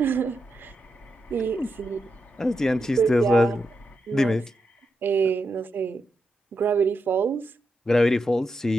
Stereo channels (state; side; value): normal; both; correlation 0.86